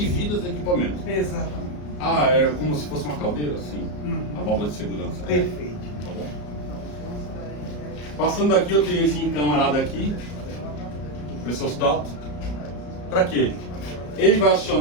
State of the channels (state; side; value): late; right; 34 ms